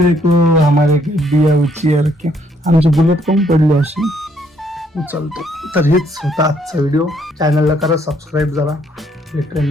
हमारे दिया उचल के आमची बुलेट कमी पडली अशी उचलतो. तर हेच होता आजचा व्हिडिओ. चॅनलला करा सबस्क्राईब. जरा भेटूया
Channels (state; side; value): normal; both; correlation 0.68